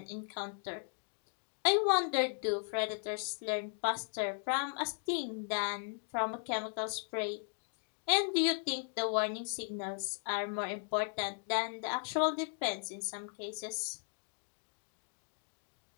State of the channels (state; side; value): silent; right; 53 dB below the other